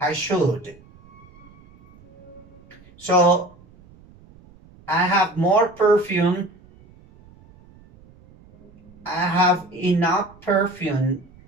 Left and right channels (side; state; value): right; noise; rumble, 25 dB below the sound